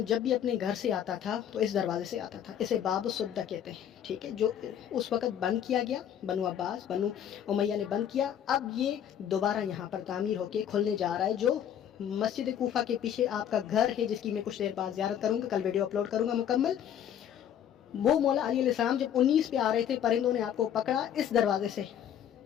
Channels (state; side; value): quieter; right; 9.7 dB